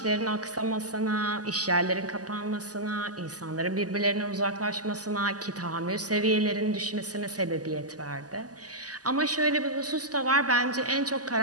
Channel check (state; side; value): late; left; 0.67 ms